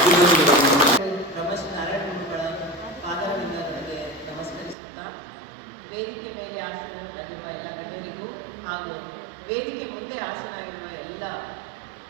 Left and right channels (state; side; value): drops out; left; at 4.8 s